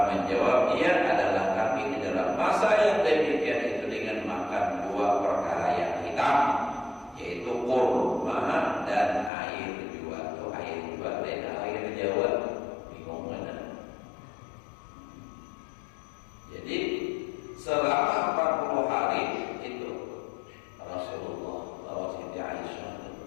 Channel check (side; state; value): right; drops out; at 9.3 s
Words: menjawab dia adalah kami di dalam masa yang demikian itu dengan makan 2 perkara yang hitam, yaitu kurma dan air jua. Itu air jua dan air Jawa bingung mana. Jadi selama 40 hari itu Rasulullah bawa Siti Aisyah